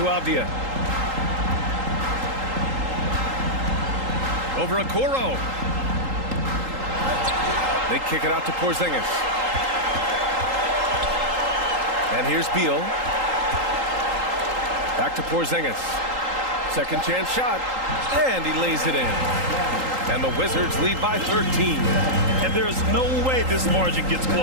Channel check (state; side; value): late; left; 3.8 ms